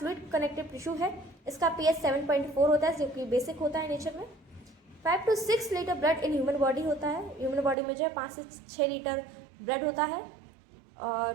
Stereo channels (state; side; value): drops out; left; at 7.8 s